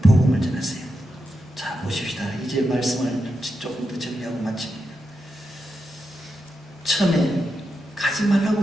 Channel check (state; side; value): normal; both; correlation 0.87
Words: 복음을 전하세요. 자, 보십시다. 이제 말씀을 조금 더 정리하고 마칩니다. 처음에 가지 말라고